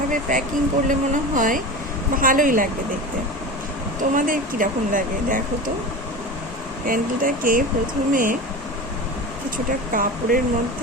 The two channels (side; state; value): both; normal; correlation 0.29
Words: প্যাকিং করলে মনে হয় ভালোই লাগবে দেখতে। তোমাদের কীরকম লাগে দেখো তো। ক্যান্ডেলটাকে প্রথমে কিছুটা কাপড়ের